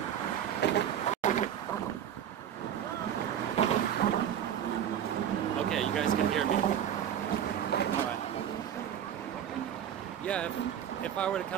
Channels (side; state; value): left; quieter; 9.8 dB